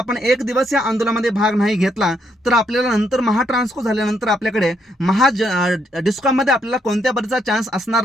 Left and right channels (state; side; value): normal; both; correlation 0.75